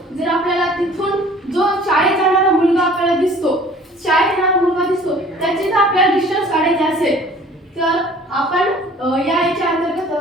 जर आपल्याला तिथून जो शाळेत जाणारा मुलगा आपल्याला दिसतो त्याचे जर आपल्याला डिस्टन्स काढायचे असेल तर आपण याच्या अंतर्गत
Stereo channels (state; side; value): normal; both; correlation 0.50